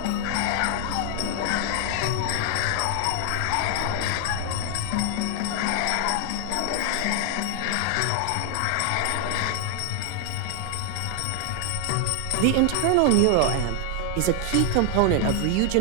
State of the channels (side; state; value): both; different; correlation 0.00